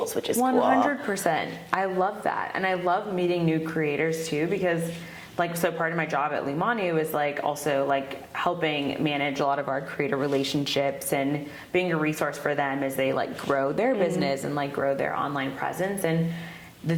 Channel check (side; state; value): both; identical; correlation 1.00